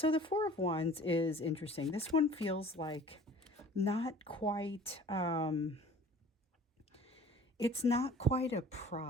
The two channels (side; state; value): both; normal; correlation 0.47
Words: the Four of Wands is interesting. This one feels like not quite, it's not quite a